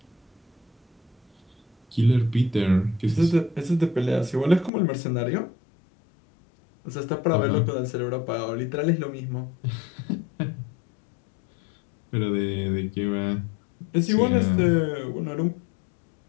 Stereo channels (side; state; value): right; drops out; at 4.7 s